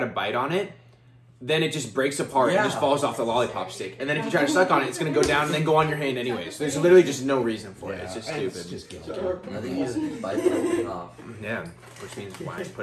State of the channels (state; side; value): identical; both; correlation 1.00